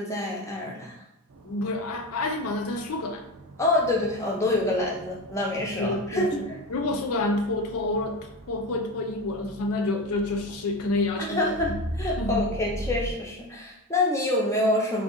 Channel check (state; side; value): normal; both; correlation 0.23